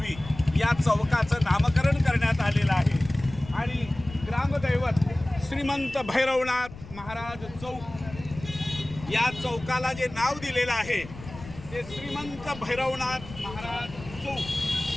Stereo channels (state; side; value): noise; left; rumble, 15 dB below the sound